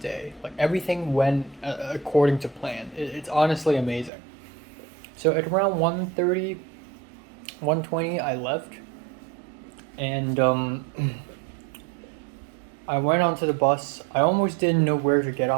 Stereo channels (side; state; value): left; drops out; at 4.1 s